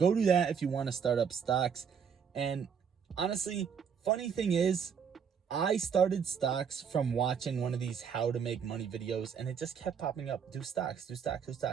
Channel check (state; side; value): quieter; left; 7.1 dB